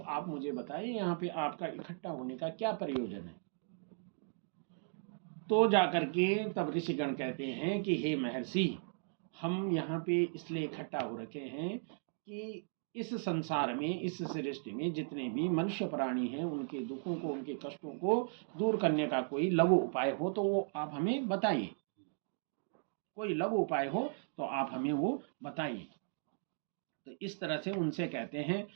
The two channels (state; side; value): silent; left; digital silence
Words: आप मुझे बताइए यहाँ पे आपका इकट्ठा होने का क्या प्रयोजन है। तो जाकर के तब ऋषिगण कहते हैं कि हे महर्षि, हम यहाँ पे इसलिए इकट्ठा हो रखे हैं कि इस संसार में, इस सृष्टि में जितने भी मनुष्य प्राणी हैं, उनके दुखों को, उनके कष्टों को दूर करने का कोई लघु उपाय हो तो वो आप हमें बताइए। कोई लघु उपाय हो तो आप हमें वो बताइए। तो इस तरह से उनसे कहते हैं।